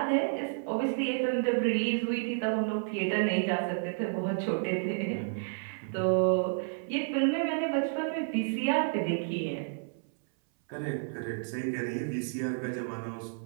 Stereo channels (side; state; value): left; silent; 57 dB below the other